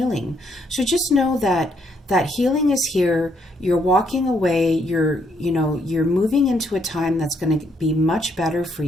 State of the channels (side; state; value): both; normal; correlation 0.73